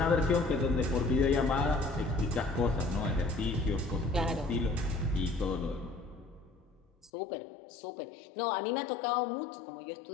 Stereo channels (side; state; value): right; drops out; at 7.1 s